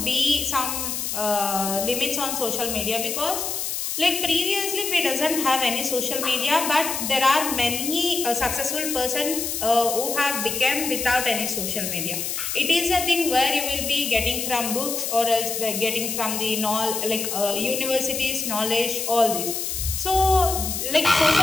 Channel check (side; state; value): left; noise; hiss, 3 dB below the sound